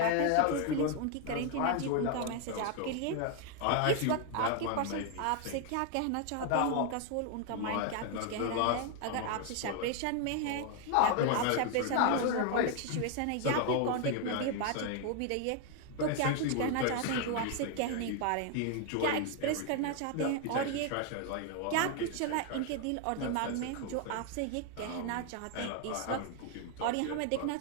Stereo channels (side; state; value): both; different; correlation 0.00